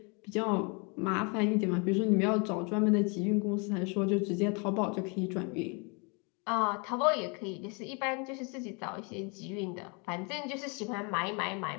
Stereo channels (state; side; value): quieter; right; 33.1 dB